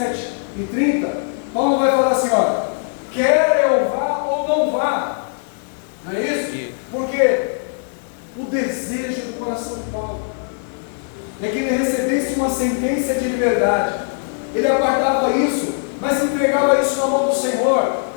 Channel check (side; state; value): right; silent; digital silence